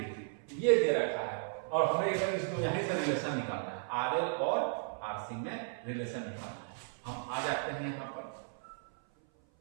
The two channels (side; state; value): left; silent; 54 dB below the other